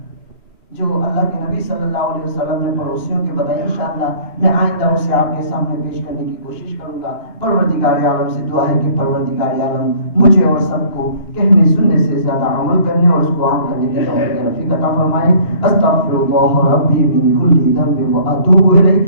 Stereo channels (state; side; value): late; right; 2.9 ms